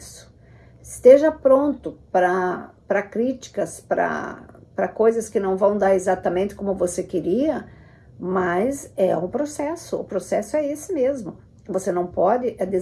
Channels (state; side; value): identical; both; correlation 1.00